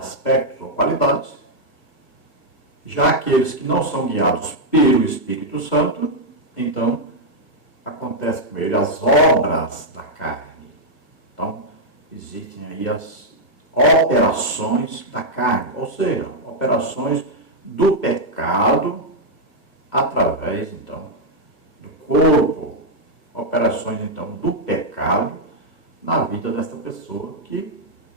ou qualidades, já aqueles que não são guiados pelo Espírito Santo, então acontece com ele as obras da carne. Então existem aí as operações da carne, ou seja, operações do pecado através, então, do corpo, operações, então, do pecado na vida desta pessoa que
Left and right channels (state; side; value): late; right; 1.6 ms